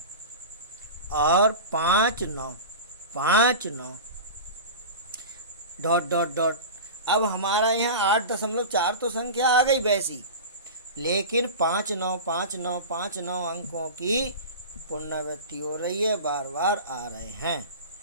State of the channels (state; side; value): inverted; both; correlation -0.30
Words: और 59 डॉट डॉट डॉट। अब हमारा यहाँ 8.4 तो संख्या आ गई वैसी, लेकिन 59 अंकों की पुनरावृत्ति हो रही है, बार बार आ रहे हैं,